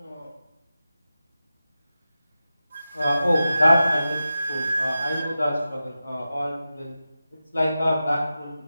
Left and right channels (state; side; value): inverted; both; correlation -0.92